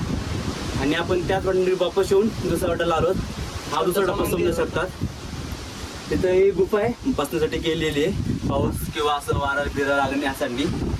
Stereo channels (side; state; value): both; identical; correlation 1.00